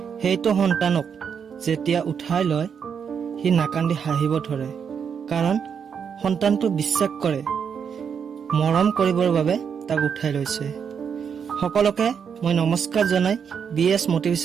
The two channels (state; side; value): quieter; left; 7.0 dB